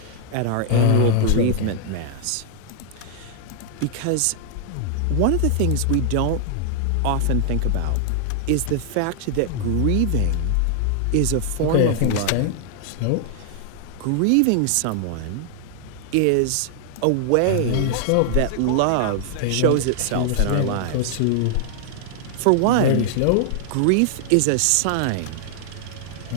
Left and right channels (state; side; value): different; both; correlation 0.00